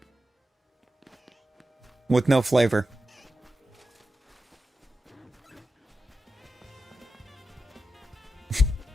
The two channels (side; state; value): both; normal; correlation 0.91